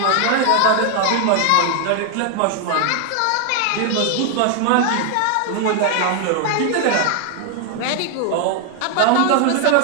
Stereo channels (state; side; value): different; both; correlation 0.01